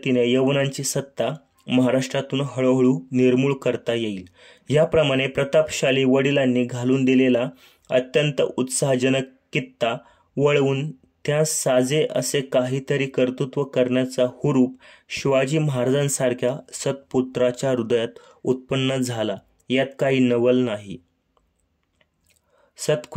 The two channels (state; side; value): identical; both; correlation 1.00